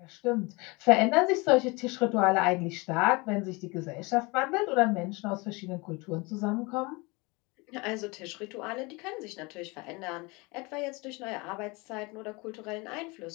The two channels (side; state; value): right; quieter; 26.3 dB